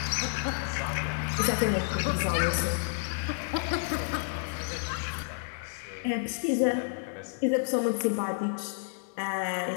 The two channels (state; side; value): silent; right; digital silence